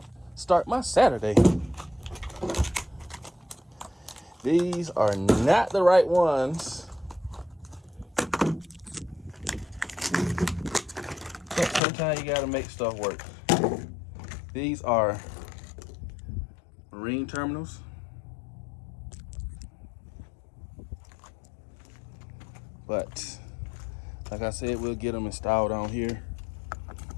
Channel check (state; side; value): drops out; right; at 11.8 s